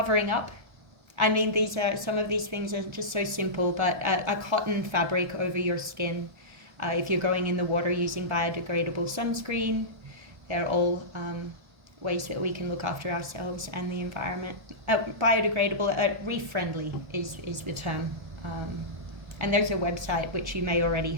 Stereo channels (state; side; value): late; left; 1.3 ms